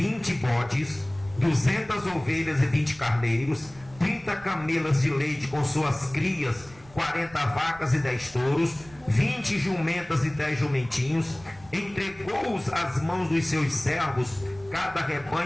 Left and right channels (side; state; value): right; noise; rumble, 23 dB below the sound